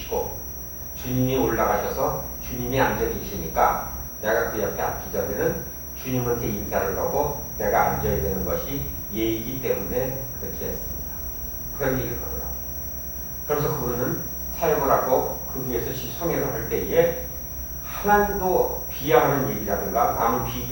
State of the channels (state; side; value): identical; both; correlation 1.00